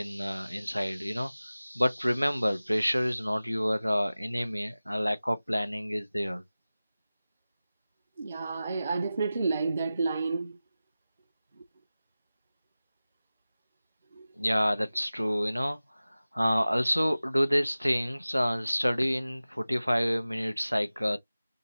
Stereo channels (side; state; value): both; inverted; correlation -0.97